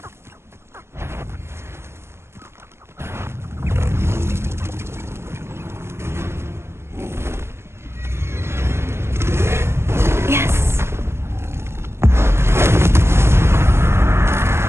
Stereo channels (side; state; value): left; late; 0.12 ms